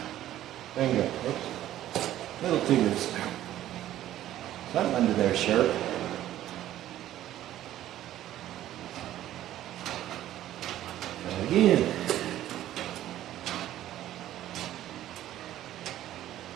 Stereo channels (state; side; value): quieter; left; 13.1 dB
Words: Finger. Oops. Little fingers. Something under there, shirt. Again.